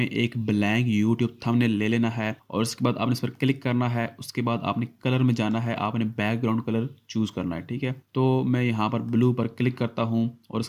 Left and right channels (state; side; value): identical; both; correlation 1.00